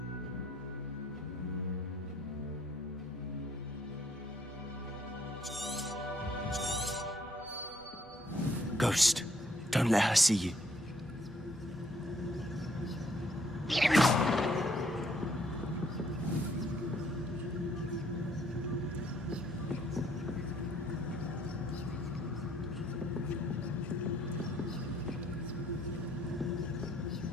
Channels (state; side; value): normal; both; correlation 0.65